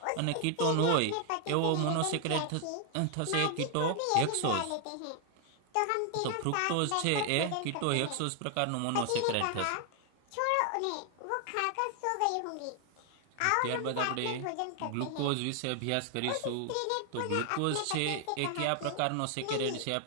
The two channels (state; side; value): different; both; correlation 0.00